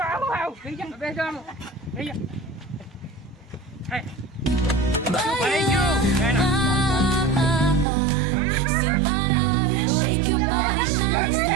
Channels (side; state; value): left; drops out; at 7.9 s